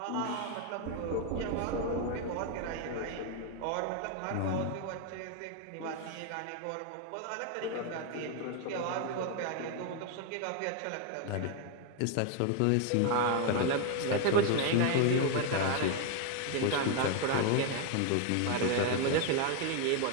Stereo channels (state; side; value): different; both; correlation 0.01